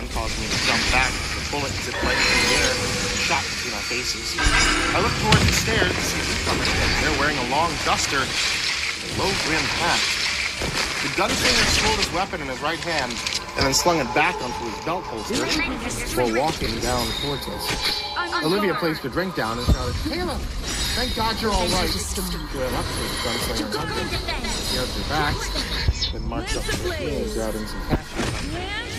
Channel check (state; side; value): identical; both; correlation 1.00